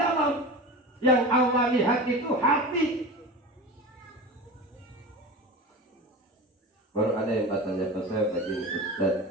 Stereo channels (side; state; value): both; normal; correlation 0.30